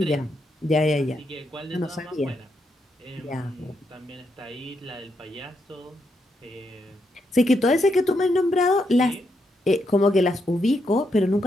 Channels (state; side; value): normal; both; correlation 0.80